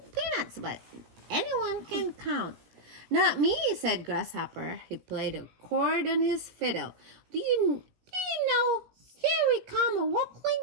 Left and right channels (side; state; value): left; late; 17 ms